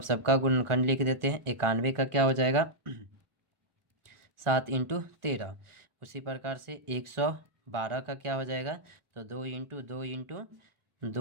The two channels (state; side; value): late; left; 1.4 ms